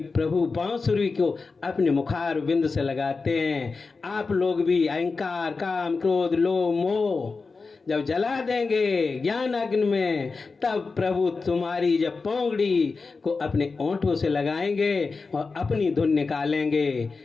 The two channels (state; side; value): quieter; right; 4.3 dB